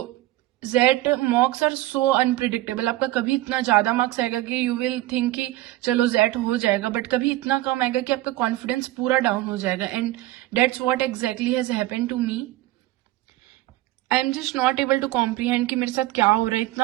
XAT mocks are so unpredictable. आपका कभी इतना ज्यादा मार्क्स आएगा कि यू विल थिंक कि चलो जेट हो जाएगा, बट कभी इतना कम आएगा कि आपका कॉन्फिडेंस पूरा डाउन हो जाएगा. And that's what exactly has happened to me. I am just not able to comprehend कि मेरे साथ क्या हो रहा है,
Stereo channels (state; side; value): quieter; left; 16.6 dB